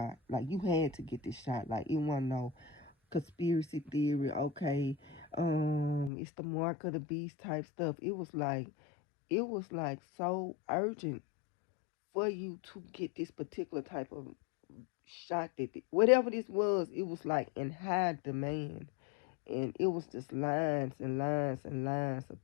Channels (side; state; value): right; drops out; at 6.1 s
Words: Like you had to get this shot. Like it wasn't no conspiracy theory. Okay, it's the mark of the beast type stuff. It was like so urgent for you to get this particular type of shot that whatever this was, it was like in high demand, and it was just lines and lines and lines of